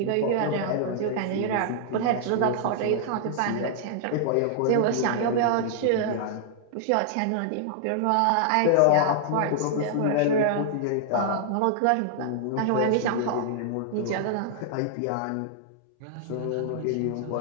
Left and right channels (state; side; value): different; both; correlation -0.01